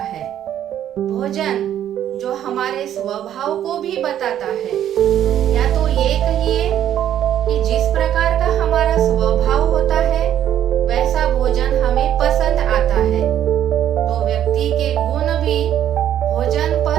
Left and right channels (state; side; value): quieter; left; 10.8 dB